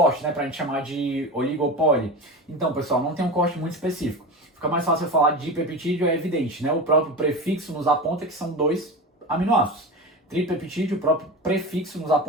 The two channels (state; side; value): normal; both; correlation 0.27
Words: né, para a gente chamar de oligopoli? Então, pessoal, não tem um corte muito específico. Fica mais fácil eu falar de peptídeo, é evidente, né? O próprio prefixo nos aponta que são 2 aminoácidos. Tripeptídeo, o próprio prefixo nos